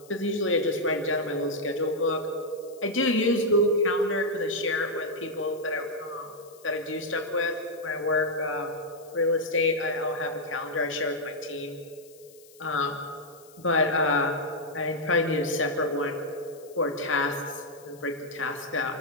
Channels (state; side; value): noise; left; hiss, 25 dB below the sound